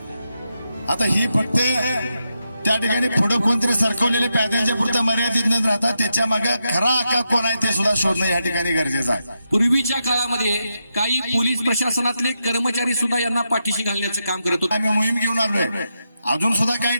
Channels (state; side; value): inverted; both; correlation -0.86